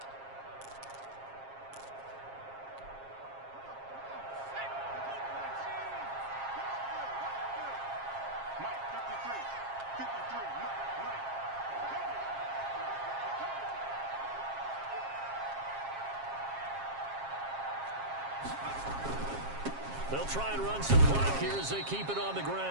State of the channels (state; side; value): late; left; 7.4 ms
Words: They'll try and run some clock here as they keep it on the